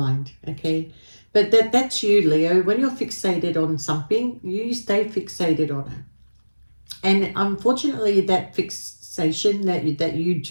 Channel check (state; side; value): inverted; both; correlation -1.00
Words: okay? But that's you, Leo. When you're fixated on something, you stay fixated on it. And unfortunately, that fixation that you